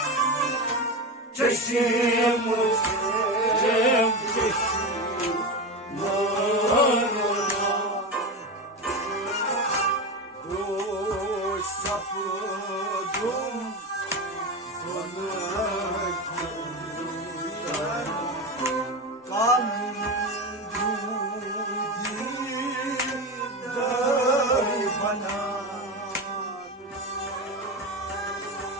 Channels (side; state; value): both; normal; correlation 0.20